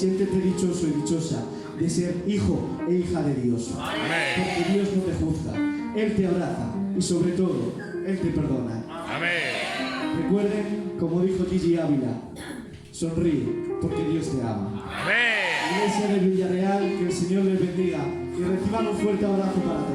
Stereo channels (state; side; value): identical; both; correlation 1.00